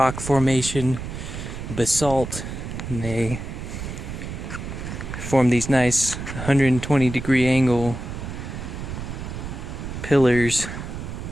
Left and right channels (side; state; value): right; noise; rumble, 7 dB below the sound